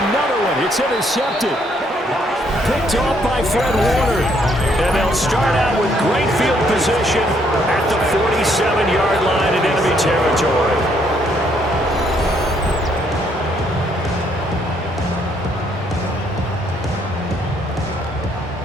one. It's intercepted. Picked off by Fred Warner. And they'll start out with great field position at the 47-yard line in enemy territory.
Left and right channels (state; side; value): normal; both; correlation 0.69